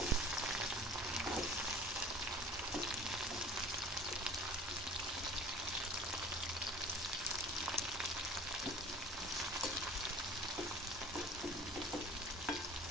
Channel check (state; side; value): normal; both; correlation 0.45